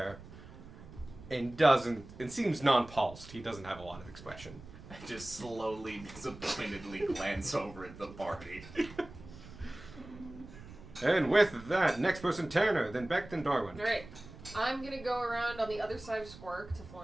and seems non-pulsed. He doesn't have a lot of expression. I just slowly, disappointedly glance over at the party. And with that, next person Tanner, then Beck, then Darwin. Alright. I'm gonna go around on the other side of Squark to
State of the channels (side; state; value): right; noise; rumble, 17 dB below the sound